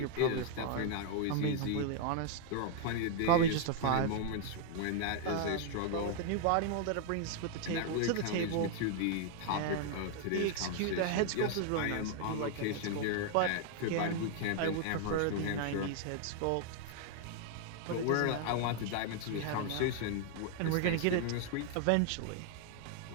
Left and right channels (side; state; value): both; different; correlation 0.00